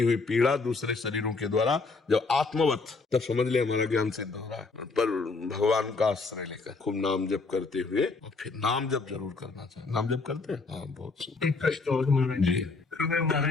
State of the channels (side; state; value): right; quieter; 4.1 dB